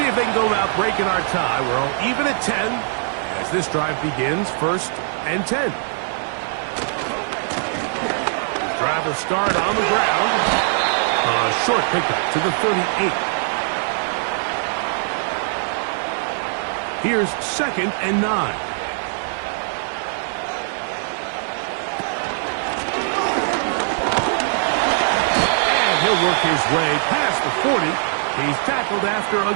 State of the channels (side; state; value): left; silent; digital silence